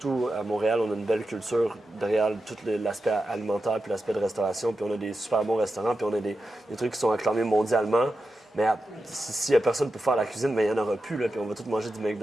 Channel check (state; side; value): normal; both; correlation 0.90